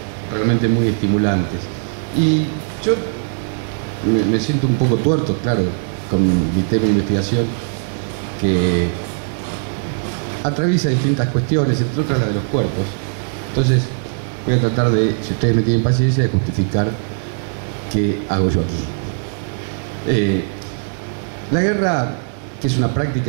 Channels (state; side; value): silent; left; digital silence